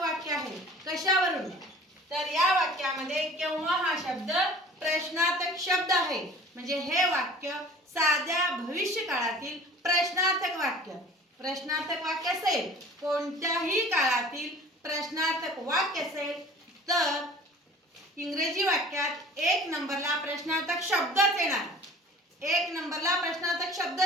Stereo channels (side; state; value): both; normal; correlation 0.46